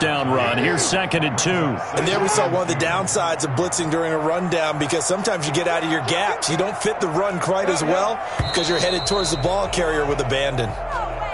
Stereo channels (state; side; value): identical; both; correlation 1.00